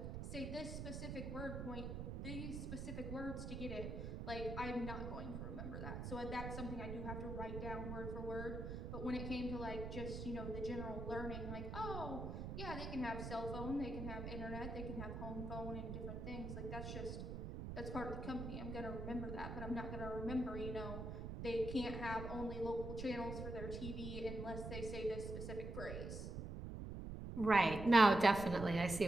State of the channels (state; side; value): noise; right; rumble, 5 dB below the sound